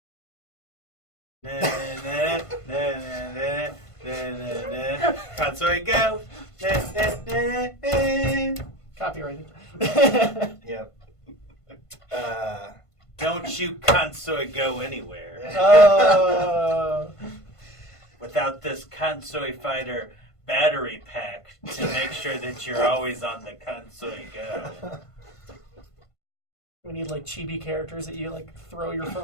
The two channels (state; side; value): late; right; 1.5 ms